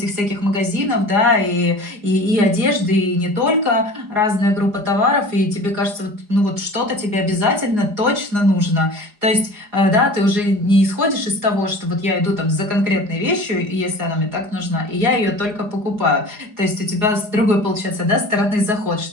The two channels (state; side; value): late; left; 4.9 ms